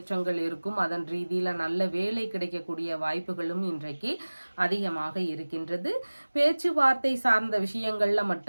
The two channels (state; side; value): inverted; both; correlation -1.00